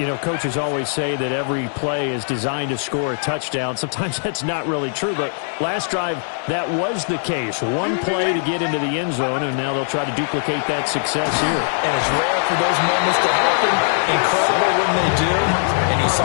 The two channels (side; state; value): right; silent; digital silence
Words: coaches always say that every play is designed to score a touchdown. Sometimes that's not really true, but last drive, that was the case. One play to get into the end zone, and now they'll try to duplicate that success here. And it's rare for those moments to happen. Incredible when they do. And you saw